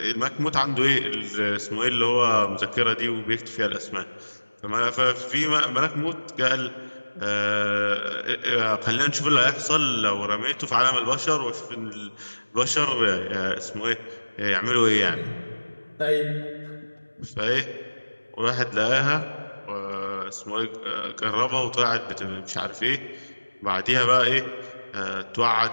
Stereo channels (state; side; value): inverted; both; correlation -1.00